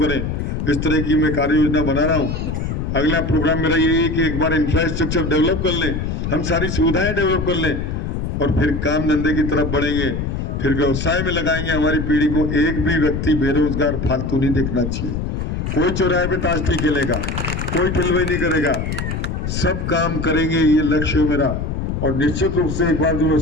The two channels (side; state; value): left; noise; rumble, 3 dB below the sound